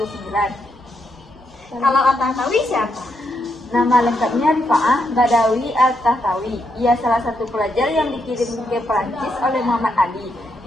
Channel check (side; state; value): both; normal; correlation 0.79